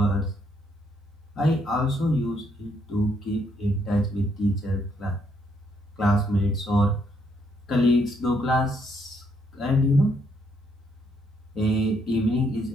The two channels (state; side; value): normal; both; correlation 0.72